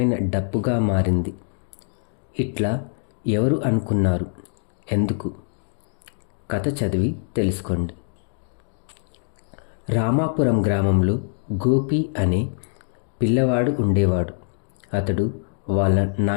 డప్పుగా మారింది. ఇట్లా ఎవరు అనుకున్నారు? ఎందుకు? కథ చదివి తెలుసుకోండి. రామాపురం గ్రామంలో గోపి అనే పిల్లవాడు ఉండేవాడు. అతడు వాళ్ళ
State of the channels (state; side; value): silent; right; 62 dB below the other